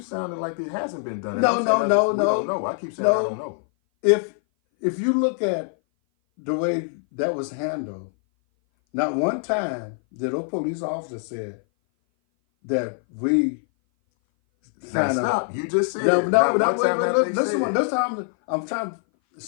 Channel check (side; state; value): right; silent; 58 dB below the other